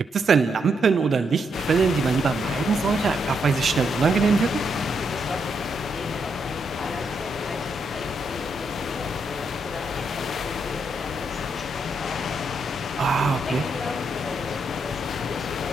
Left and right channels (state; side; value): normal; both; correlation 0.79